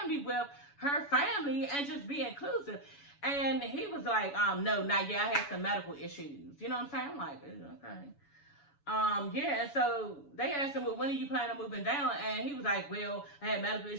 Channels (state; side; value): late; right; 7.0 ms